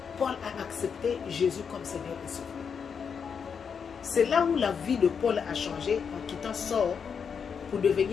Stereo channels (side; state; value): right; quieter; 6.6 dB